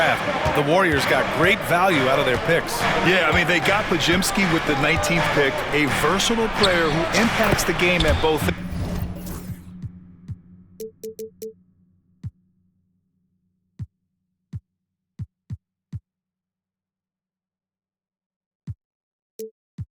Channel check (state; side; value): identical; both; correlation 1.00